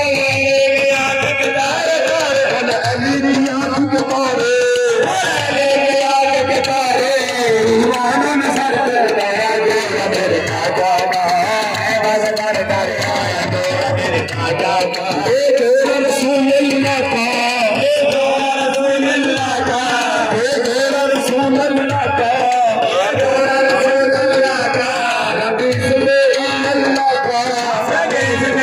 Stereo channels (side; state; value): both; identical; correlation 1.00